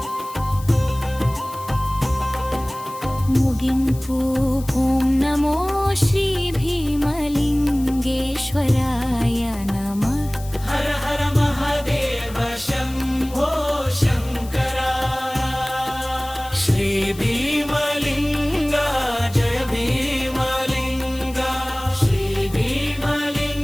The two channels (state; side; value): noise; left; hiss, 18 dB below the sound